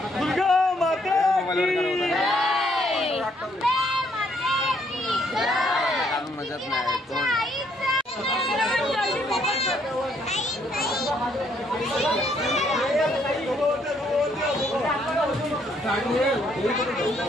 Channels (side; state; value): both; normal; correlation 0.69